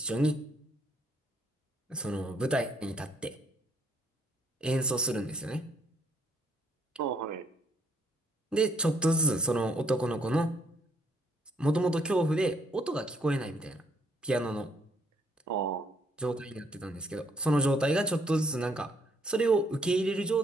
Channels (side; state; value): both; normal; correlation 0.68